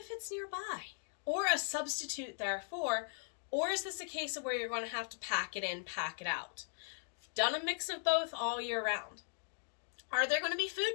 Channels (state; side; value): silent; right; digital silence